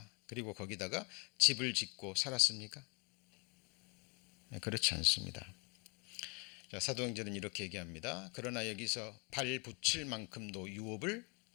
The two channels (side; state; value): right; quieter; 32.3 dB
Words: 그리고 거기다가 집을 짓고 살았습니까? 그렇지 않습니다. 사도행전은 이렇게 얘기합니다. 그러나 여기서 발 붙일 만큼도 유업을